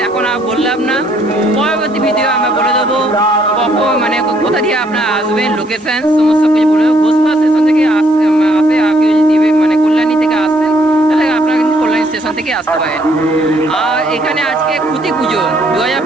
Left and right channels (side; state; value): left; noise; hiss, 30 dB below the sound